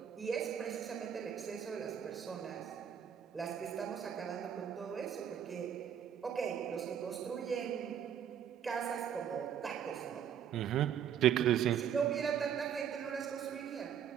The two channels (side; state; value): left; quieter; 8.8 dB